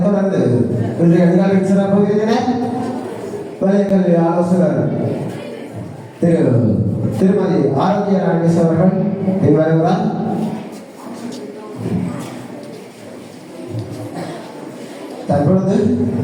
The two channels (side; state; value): both; identical; correlation 1.00